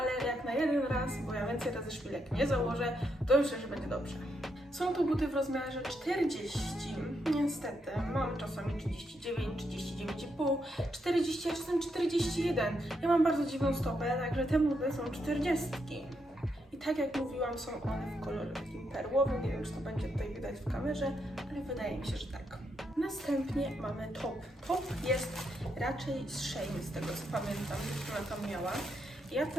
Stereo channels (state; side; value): normal; both; correlation 0.80